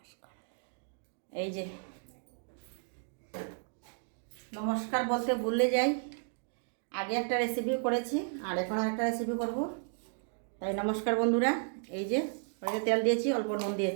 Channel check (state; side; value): silent; left; 55 dB below the other